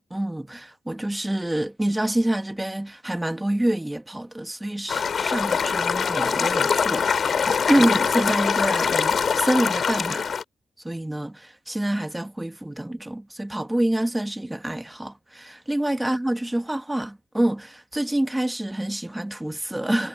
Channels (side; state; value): both; normal; correlation 0.93